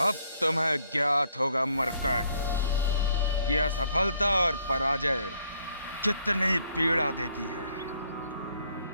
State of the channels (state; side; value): inverted; both; correlation -0.68